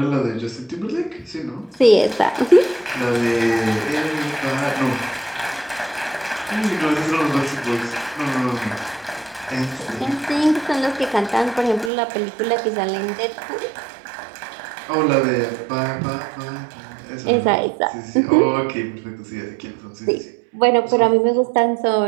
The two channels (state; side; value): drops out; left; at 11.9 s